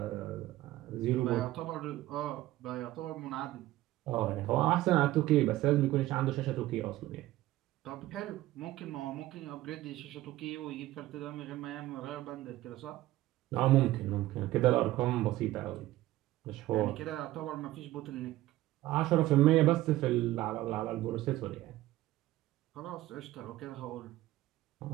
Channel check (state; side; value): quieter; left; 16.2 dB